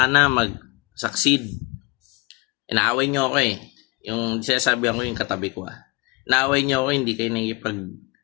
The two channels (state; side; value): quieter; right; 25.8 dB